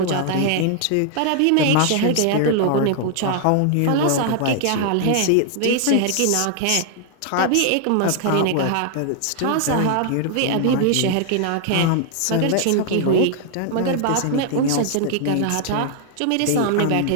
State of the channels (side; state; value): both; different; correlation 0.00